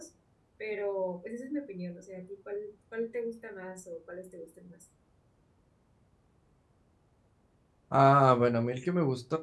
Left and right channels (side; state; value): both; identical; correlation 1.00